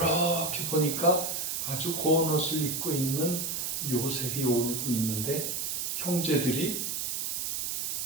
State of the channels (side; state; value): right; noise; hiss, 1 dB below the sound